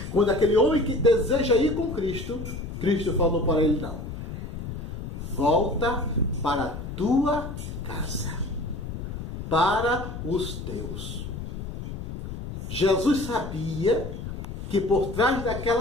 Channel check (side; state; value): left; noise; rumble, 7 dB below the sound